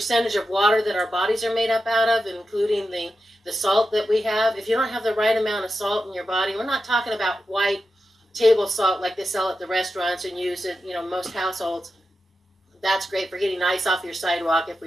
of water that our bodies are made up out of, including the salt that we have, if you don't have the right amount of salt in your body, we're not talking about white table salt like they sell at the restaurants and use it, most households. That's great for getting ice off your sidewalk if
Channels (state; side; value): normal; both; correlation 0.90